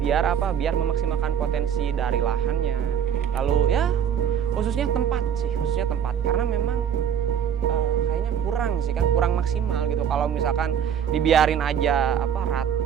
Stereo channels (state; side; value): quieter; left; 8.7 dB